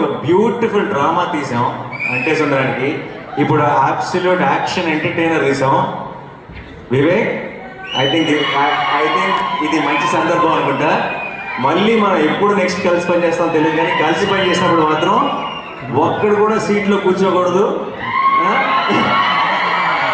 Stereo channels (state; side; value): identical; both; correlation 1.00